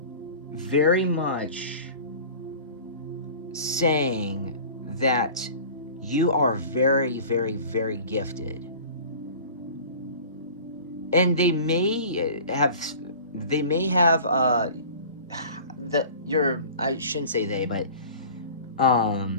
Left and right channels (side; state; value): both; inverted; correlation -0.41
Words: very much saying that you are very, very, very gifted. And they may have I shouldn't say they, but